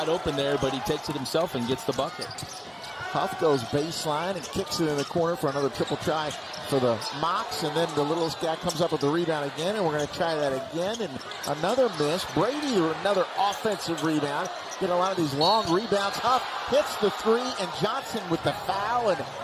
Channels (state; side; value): identical; both; correlation 1.00